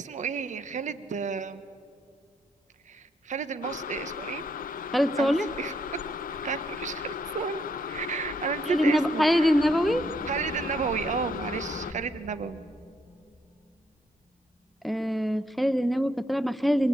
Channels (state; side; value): normal; both; correlation 0.73